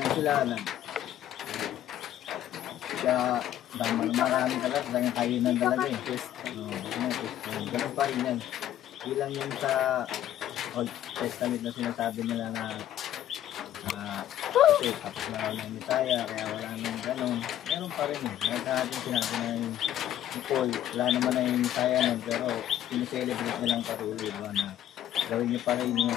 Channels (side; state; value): right; quieter; 11.8 dB